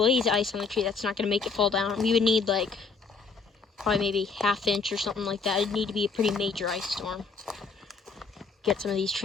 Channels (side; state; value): right; quieter; 4.9 dB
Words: ice on the tree. That's not going to make it fall down. We would need like probably maybe ½ inch or something like that. It'd need to be a pretty major ice storm. Get some of these